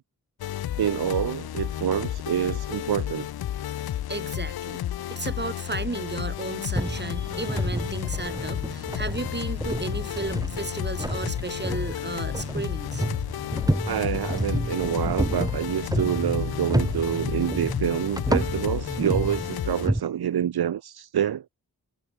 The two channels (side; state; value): both; normal; correlation 0.17